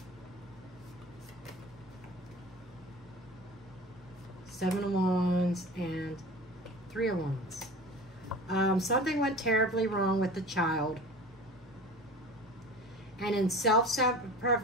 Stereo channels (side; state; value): both; normal; correlation 0.37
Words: Seven of Wands and Three of Wands. Something went terribly wrong with the child, and in